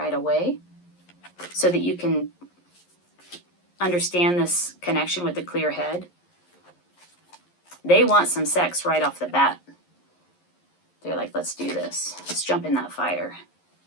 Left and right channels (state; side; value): late; right; 11 ms